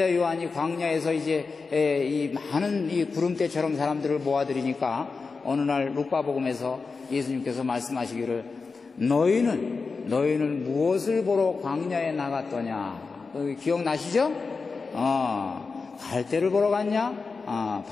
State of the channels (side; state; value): right; quieter; 4.5 dB